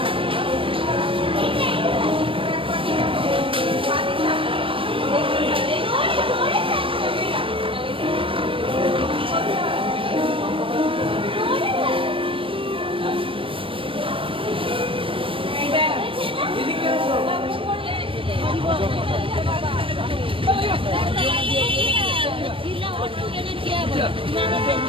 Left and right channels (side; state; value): left; late; 0.25 ms